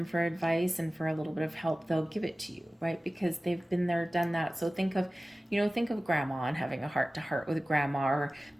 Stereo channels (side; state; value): both; normal; correlation 0.97